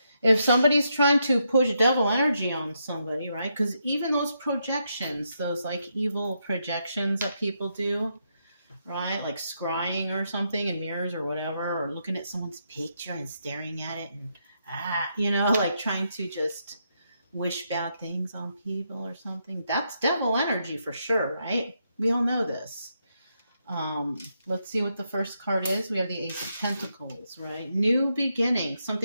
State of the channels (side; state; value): both; inverted; correlation -0.80